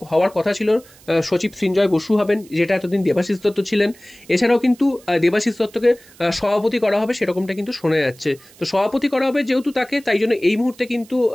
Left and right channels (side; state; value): right; noise; hiss, 25 dB below the sound